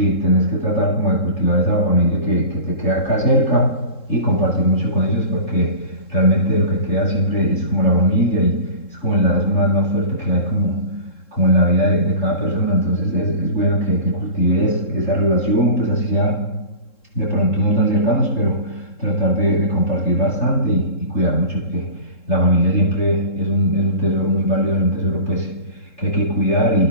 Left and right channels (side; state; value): right; late; 3.7 ms